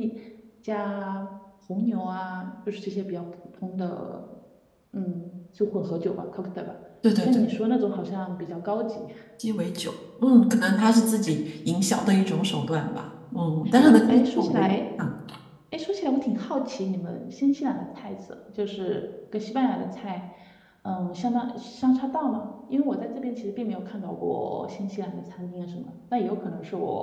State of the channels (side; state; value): both; identical; correlation 1.00